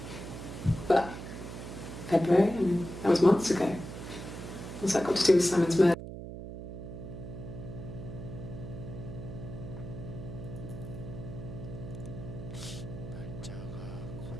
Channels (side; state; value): right; noise; hum, 9 dB below the sound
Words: But February, I mean, that was months ago. What's that got to do with Simon's murder? 날짜가